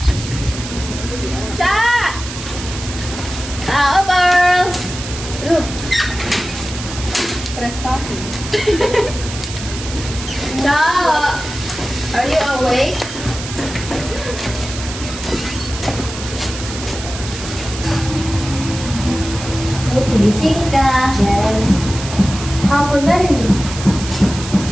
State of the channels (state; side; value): noise; right; hiss, 10 dB below the sound